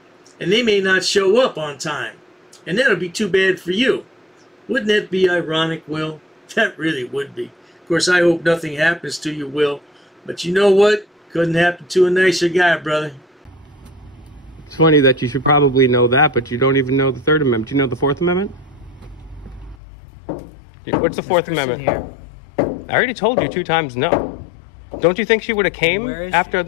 And they may not show up on time. And that'll be too bad for you. Wouldn't that be ironic, Will? That really would be. Of course, I hope nothing happens to you, Will. But you know what? Couldn't happen to a nicer guy, brother. It's funny that you should probably know that, but you don't even know the Third Amendment. Do you know the Fourth Amendment? What's the Fourth Amendment? Here. I already told you 2 times no. Don't you think she would have came after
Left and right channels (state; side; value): drops out; right; at 19.8 s